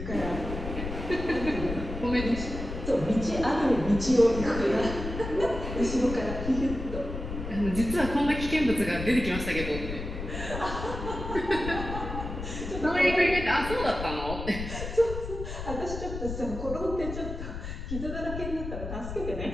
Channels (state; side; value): noise; left; rumble, 7 dB below the sound